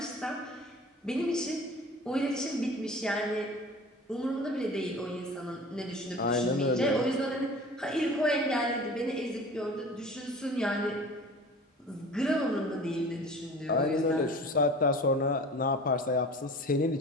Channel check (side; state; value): both; normal; correlation 0.41